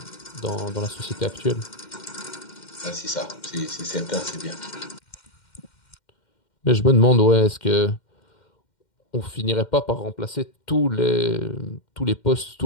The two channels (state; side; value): late; right; 2.1 ms